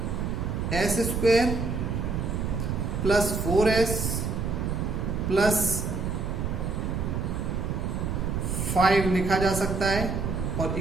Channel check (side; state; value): right; noise; rumble, 1 dB below the sound